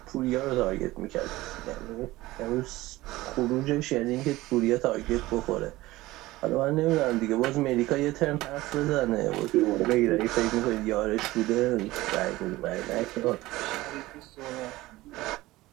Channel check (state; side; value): quieter; left; 18.3 dB